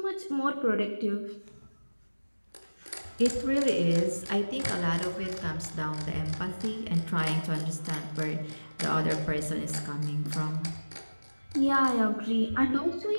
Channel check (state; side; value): inverted; both; correlation -1.00